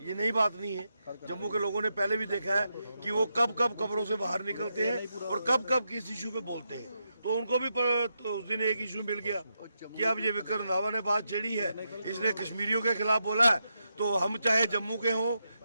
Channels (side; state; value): both; inverted; correlation -0.84